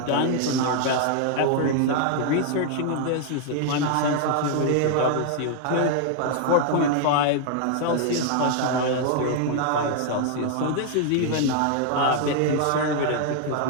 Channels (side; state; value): both; different; correlation 0.00